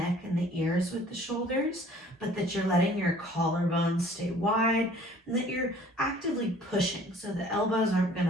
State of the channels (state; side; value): normal; both; correlation 0.53